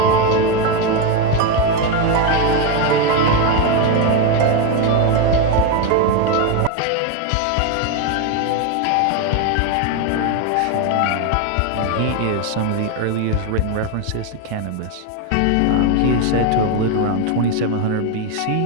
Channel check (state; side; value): different; both; correlation 0.02